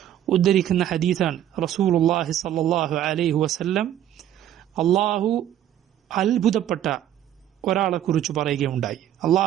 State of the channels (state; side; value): quieter; left; 11.4 dB